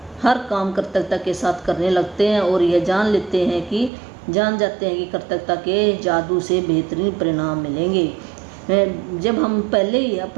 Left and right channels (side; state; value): left; drops out; at 3.9 s